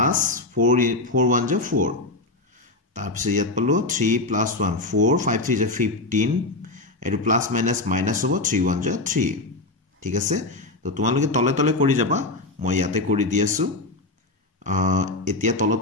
4 1 = 4 তাৰ পিছত ইয়াত পালো 3 + 1 4 5 3 = 15 এটো প্লাস মাইনাস হ'ব 3 1 = 3 ঠিক আছে তো তোমালোকে তলে তলে কৰি যাবা মই ইয়াতে কৰি দি আছো এতিয়া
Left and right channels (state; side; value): quieter; right; 3.1 dB